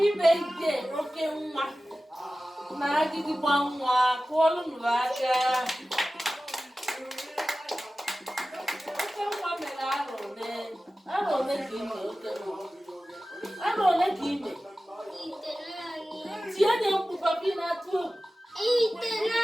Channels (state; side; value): normal; both; correlation 0.96